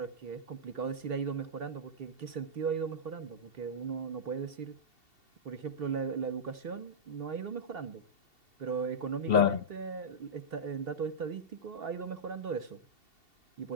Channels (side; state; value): left; late; 2.7 ms